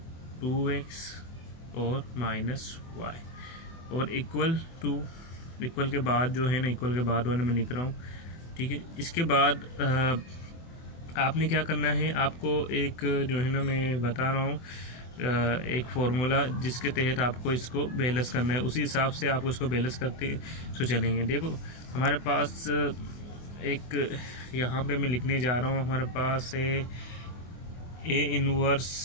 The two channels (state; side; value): late; right; 24 ms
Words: 2x और माइनस y और इक्वल के बाद जो है ना, इक्वल के बाद वाले मैं लिख रहा हूँ। ठीक है, इसके बाद आपने क्या करना है, आपको एक जो है ना मैं बता रहा हूँ एक फार्मूला जिसके तहत आपको इसको बैलेंस करना है। उसी हिसाब से आपको इसको बैलेंस करते तो चलेंगे। देखो हमारे पास एक यहाँ पे मैं लिखने जा रहा हूँ, हमारे पास है ए